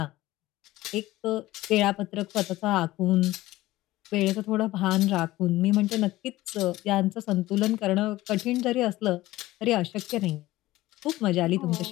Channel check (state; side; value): quieter; right; 17.2 dB